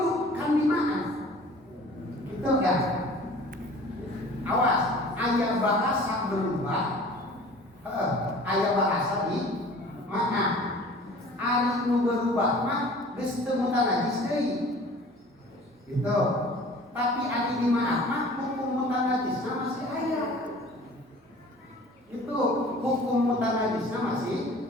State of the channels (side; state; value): both; normal; correlation 0.46